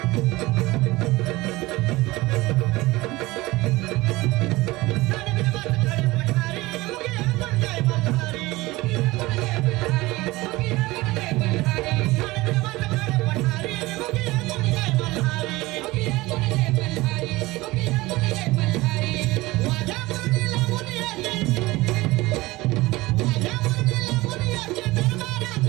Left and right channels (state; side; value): quieter; left; 20.1 dB